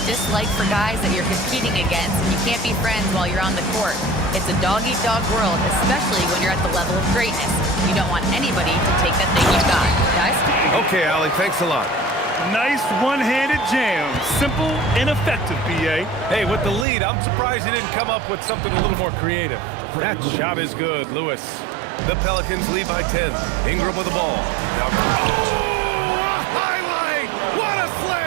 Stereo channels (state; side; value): drops out; left; at 16.9 s